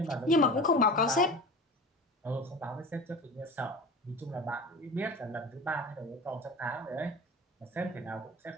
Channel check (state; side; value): normal; both; correlation 0.35